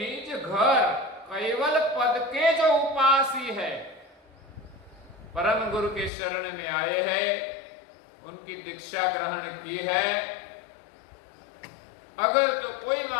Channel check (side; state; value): right; drops out; at 6.1 s